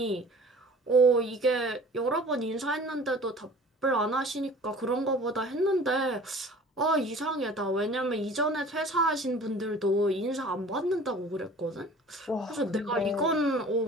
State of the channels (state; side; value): normal; both; correlation 0.46